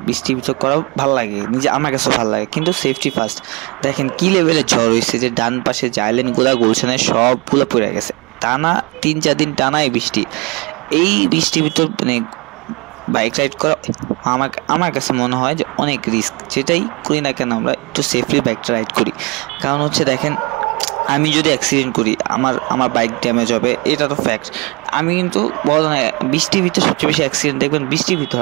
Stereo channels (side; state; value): left; quieter; 27.5 dB